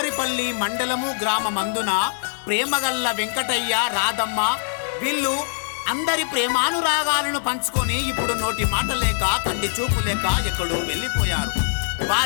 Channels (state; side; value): silent; right; 58 dB below the other